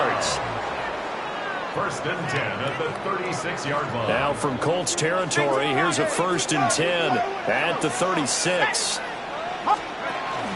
First and 10 at the 36-yard line. Now from Colts territory, here's a 1st and 10 at the 36.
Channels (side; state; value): both; identical; correlation 1.00